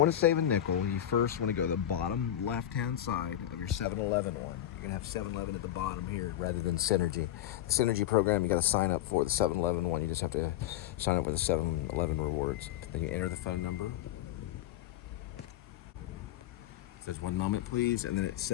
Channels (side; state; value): right; quieter; 12.3 dB